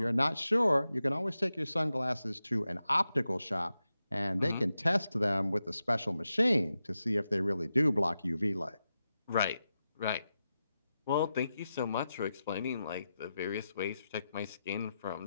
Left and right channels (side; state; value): both; inverted; correlation -0.90